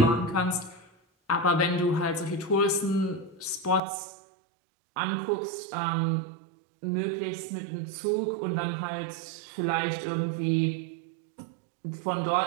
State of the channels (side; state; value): left; drops out; at 3.8 s